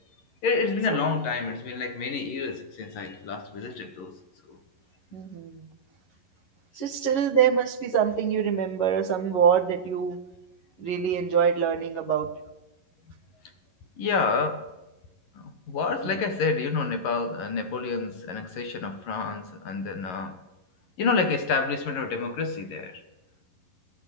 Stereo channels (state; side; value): late; right; 11 ms